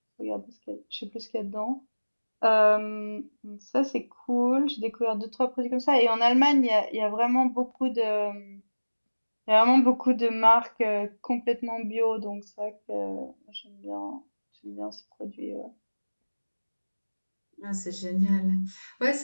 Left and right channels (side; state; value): both; inverted; correlation -1.00